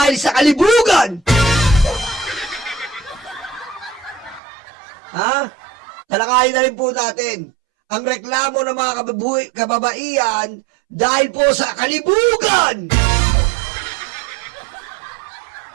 sa kalibugan. Ha? Talakayin na rin po natin ang reklamo ng mga kababaihan dahil po sa kalibugan.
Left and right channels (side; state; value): left; drops out; at 4.4 s